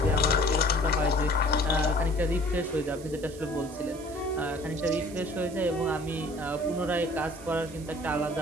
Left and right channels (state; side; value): noise; right; hiss, 19 dB below the sound